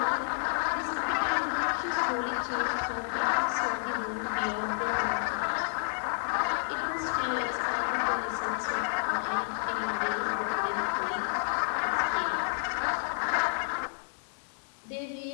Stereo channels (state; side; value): silent; right; digital silence